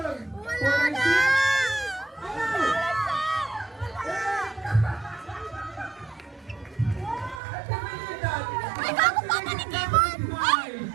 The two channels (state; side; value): drops out; left; at 7.4 s